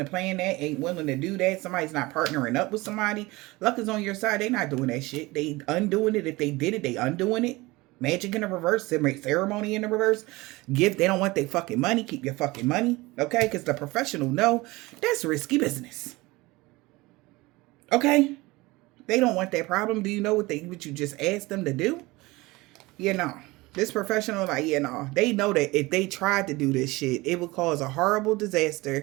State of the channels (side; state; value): left; quieter; 21.6 dB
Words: plan that, ain't willing to do that. Somebody's not partnering up with somebody. Luck is on your side. They not doing that shit. They undoing it. If they did it, they undoing it. Magic in the reverse. Ceremony in the reverse. Gift. They don't want their fucking money. Keep your fucking money. Okay? Because the professional know that's risky business. Okay? They don't want that problem. Do you know what you just asked them to do? You know. This professional, like, you know, they know that if they tried to do this shit, it would cause a horrible